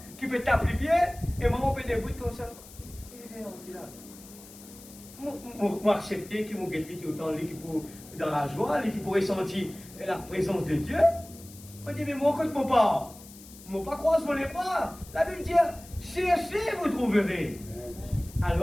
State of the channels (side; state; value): left; noise; hiss, 19 dB below the sound